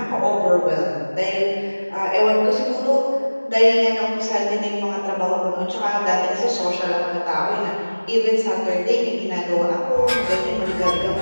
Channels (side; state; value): both; inverted; correlation -1.00